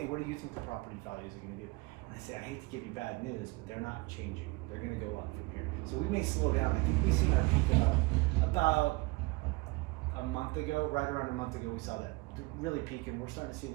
what do you think the property values are going to do? And I say, I hate to give you bad news, but they're not changing. They're going to go up from here. So we may slow down. I think we've seen our peak about a month ago, right around a month ago, we saw that really peak, and we're starting to see a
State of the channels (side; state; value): left; quieter; 24.4 dB